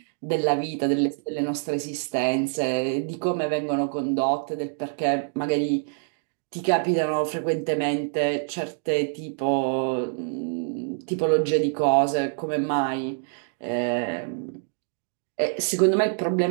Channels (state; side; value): silent; left; digital silence